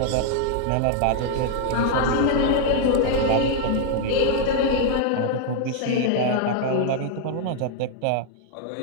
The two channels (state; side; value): different; both; correlation 0.00